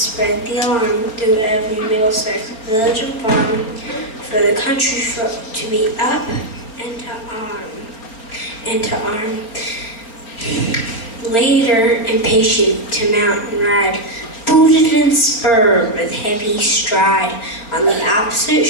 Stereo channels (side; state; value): right; late; 4.4 ms